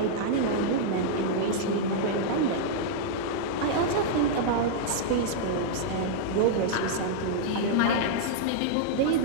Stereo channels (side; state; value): both; different; correlation -0.02